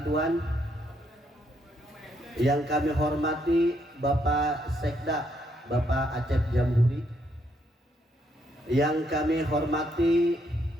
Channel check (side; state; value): both; normal; correlation 0.74